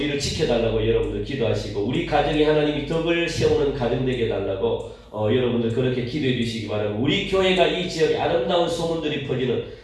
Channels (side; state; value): both; identical; correlation 1.00